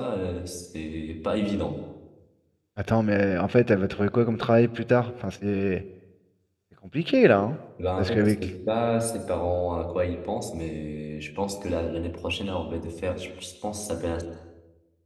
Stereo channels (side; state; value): both; identical; correlation 1.00